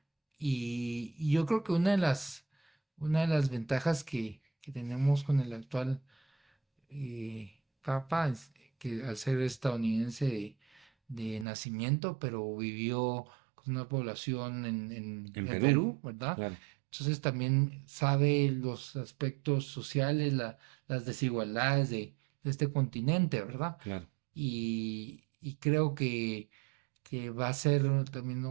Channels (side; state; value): left; drops out; at 11.5 s